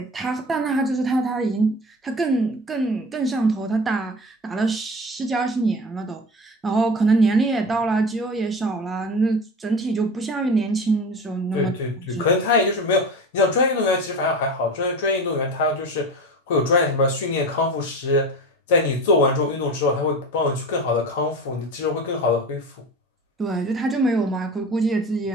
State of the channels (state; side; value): normal; both; correlation 0.32